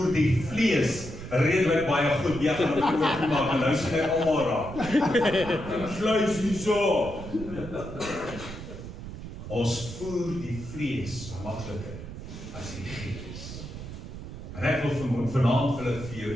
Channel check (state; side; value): noise; right; rumble, 10 dB below the sound